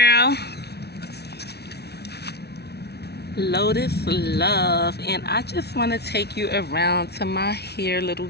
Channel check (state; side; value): late; right; 0.48 ms